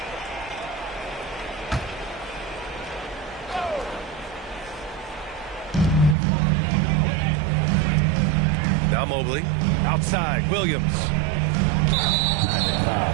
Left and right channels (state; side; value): drops out; left; at 6.2 s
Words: Now Mobley. Outside, Williams.